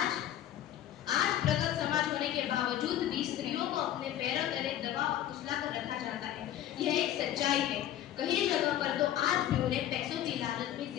प्रगत समाज होने के बावजूद भी स्त्रियों को अपने पैरों तले दबा और कुचला कर रखा जाता है। यह एक सच्चाई है। कई जगह पर तो आज भी उन्हें पैसों की लालच में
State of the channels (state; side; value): quieter; right; 12.0 dB